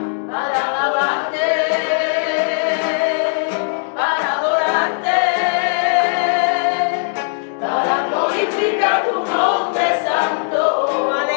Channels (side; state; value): right; silent; digital silence